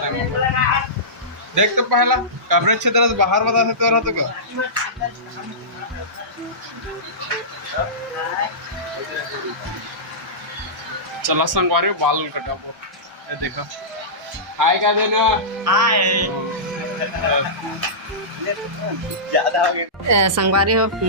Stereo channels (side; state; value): both; normal; correlation -0.19